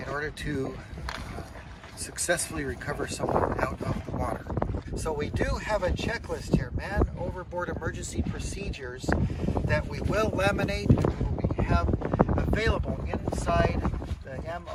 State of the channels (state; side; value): identical; both; correlation 1.00